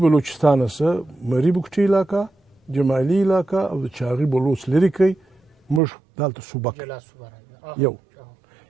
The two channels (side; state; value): left; drops out; at 5.8 s